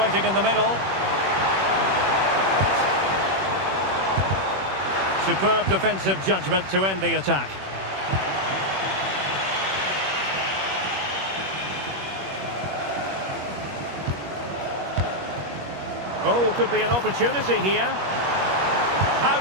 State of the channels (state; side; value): late; left; 21 ms